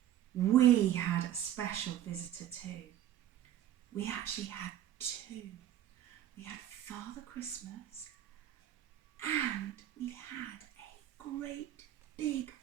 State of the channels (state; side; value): quieter; left; 11.8 dB